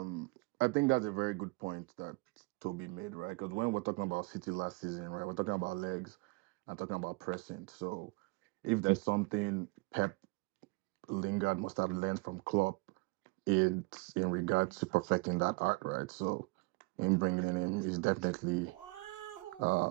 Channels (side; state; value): left; quieter; 26.0 dB